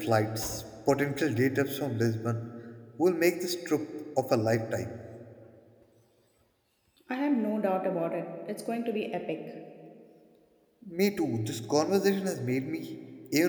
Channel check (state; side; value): identical; both; correlation 1.00